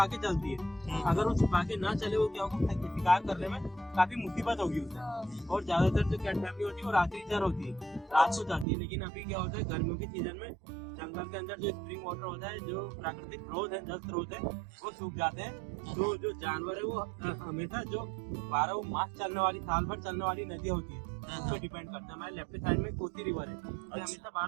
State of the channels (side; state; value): left; drops out; at 8.7 s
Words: के चलती है। अगर वो छुपा के ना चले, वो क्या होगा, शिकार करने में काफी मुसीबत होगी उसे। और ज्यादातर जो कैट फैमिली होती है वो रात्रि चर होती है, रात को जाती है। लेकिन अभी क्या होता है, गर्मियों के सीजन में जंगल के अंदर जो स्प्रिंग वाटर होता है, जो प्राकृतिक स्रोत है, जल स्रोत है, वो सूख जाते हैं। तो जो जानवर है वो हमेशा जो 12 मास चलने वाली, साल भर चलने वाली नदी होती है, उस पर डिपेंड करता है। हमारे लेफ्ट साइड में कोसी रिवर है, ये हमेशा